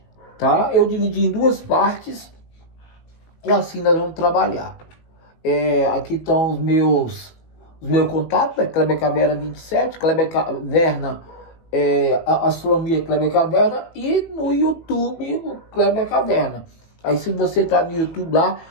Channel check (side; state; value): right; late; 18 ms